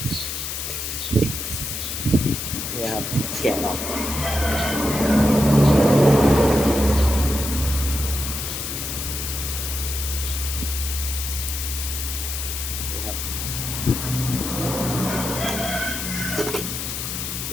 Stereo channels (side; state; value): left; noise; hiss, 4 dB below the sound